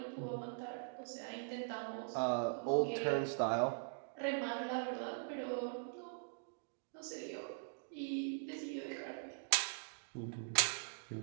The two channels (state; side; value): silent; left; digital silence